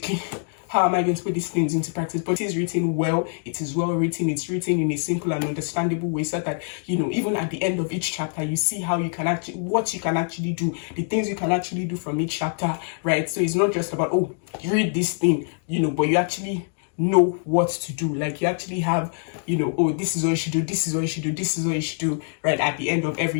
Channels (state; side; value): silent; right; 62 dB below the other